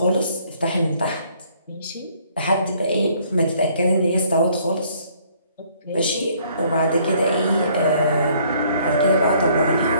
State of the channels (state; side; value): inverted; both; correlation -0.62